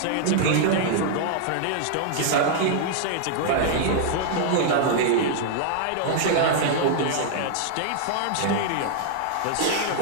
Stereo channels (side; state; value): both; different; correlation -0.01